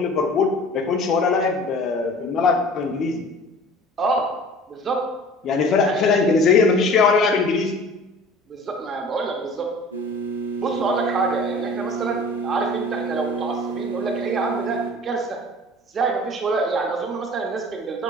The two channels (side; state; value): both; normal; correlation 0.44